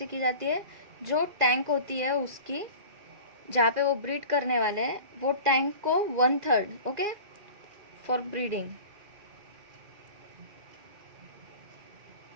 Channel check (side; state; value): left; late; 2.4 ms